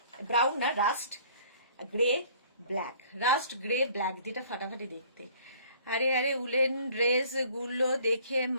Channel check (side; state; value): both; inverted; correlation -0.54